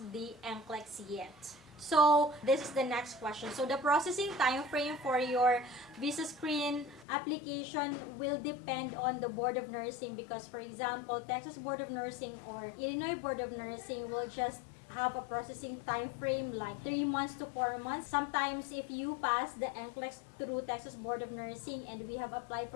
the NCLEX yet. So this is the next question. So the processing time frame for your VisaScreen application will depend on the Board of Nursing, because for example, Texas Board of Nursing or Illinois Board of Nursing will just have a processing time frame like 3 months to 4 months. Sometimes if you pass the NCLEX through Texas Board of Nursing and we have applied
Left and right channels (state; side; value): drops out; right; at 7.1 s